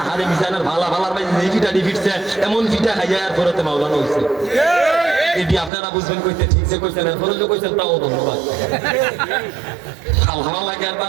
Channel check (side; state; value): left; drops out; at 5.7 s